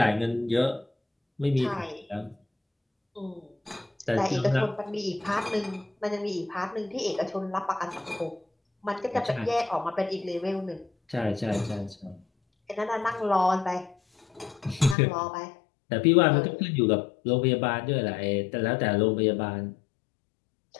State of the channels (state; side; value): drops out; right; at 15.0 s